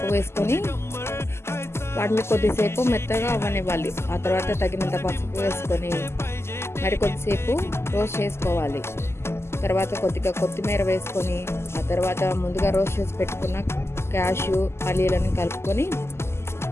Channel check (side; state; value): right; late; 0.12 ms